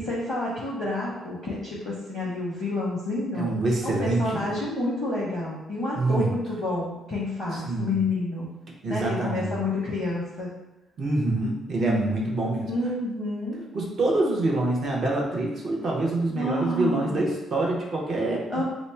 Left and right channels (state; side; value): normal; both; correlation 0.72